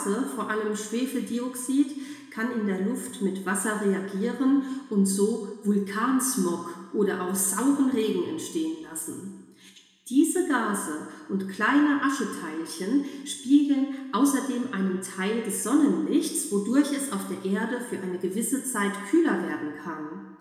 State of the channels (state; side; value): identical; both; correlation 1.00